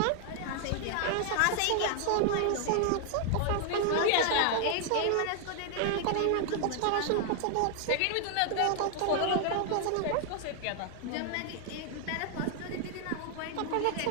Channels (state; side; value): different; both; correlation 0.00